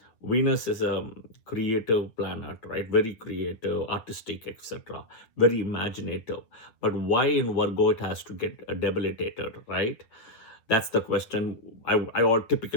Venus is a creative planet, right? Very creative, artistic, etc. Very imaginative. But why in Virgo it has to get debilitated, right? That's the question I all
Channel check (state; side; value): late; right; 9.1 ms